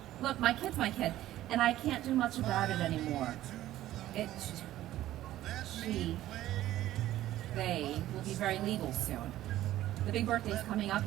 Look, my kid's my kid, and I can't do much about it anymore. They will be very legal soon. The big birthday's coming up,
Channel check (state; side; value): quieter; left; 14.1 dB